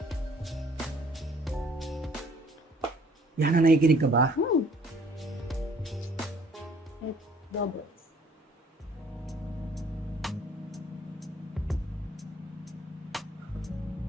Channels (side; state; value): both; normal; correlation 0.58